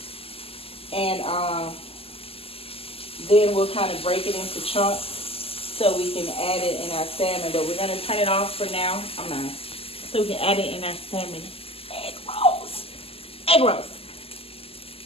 And then we'll kind of break it into chunks so we can add it in our salmon. But we're going to turn it off for now. So we can add it in our salmon egg rolls. Egg rolls.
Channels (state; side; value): late; right; 0.28 ms